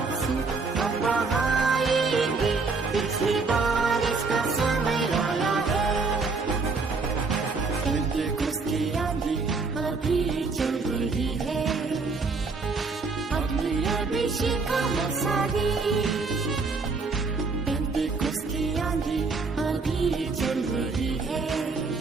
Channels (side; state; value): left; quieter; 4.3 dB